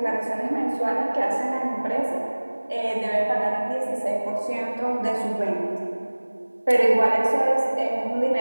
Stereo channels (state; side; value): inverted; both; correlation -1.00